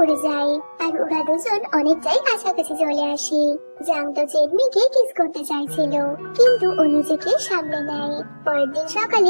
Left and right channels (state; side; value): inverted; both; correlation -1.00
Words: যায়, আর ওরা দুজন অনেকটাই কাছাকাছি চলে আসে। জাং তো চেনমিকে কিস করতে চাইছিল, কিন্তু ও নিজেকে সামলে নেয়। পরের দিন